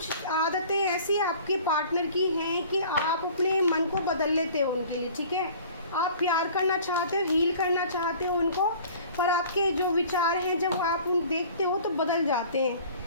आदतें ऐसी आपके पार्टनर की हैं कि आप अपने मन को बदल लेते हो उनके लिए, ठीक है। आप प्यार करना चाहते हो, हील करना चाहते हो उनको, पर आपके जो विचार हैं जब आप उन देखते हो तो बदल जाते हैं।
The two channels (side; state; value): both; inverted; correlation -0.47